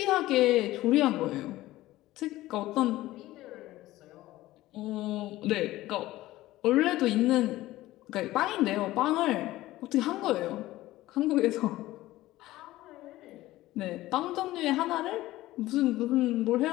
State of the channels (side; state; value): right; quieter; 16.6 dB